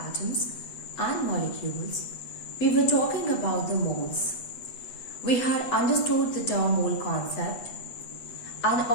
and molecules, we were talking about the moles. We had understood the term mole concept, and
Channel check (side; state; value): right; late; 8.1 ms